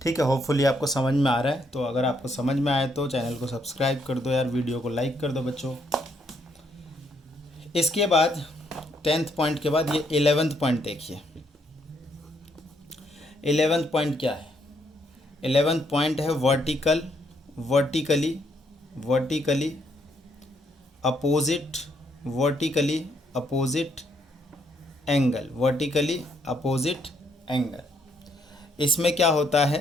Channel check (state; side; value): normal; both; correlation 0.72